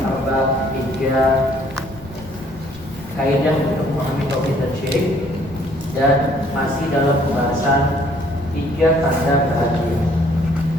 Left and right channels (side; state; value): left; noise; rumble, 18 dB below the sound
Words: Arba', 3 kaidah untuk memahami tauhid dan syirik, dan masih dalam pembahasan 3 tanda bahagia.